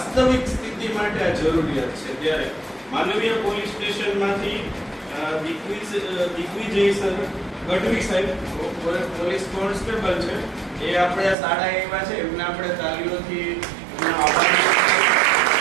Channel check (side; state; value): left; drops out; at 11.4 s